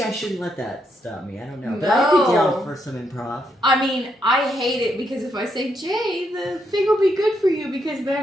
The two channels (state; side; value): normal; both; correlation 0.78